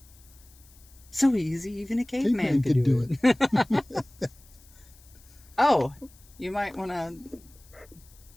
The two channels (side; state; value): left; noise; hiss, 26 dB below the sound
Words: So easy, even a caveman could do it. Oh, you might want to...